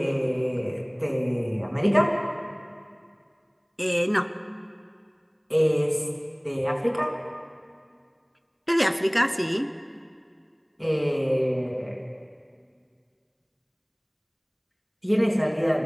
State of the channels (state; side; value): identical; both; correlation 1.00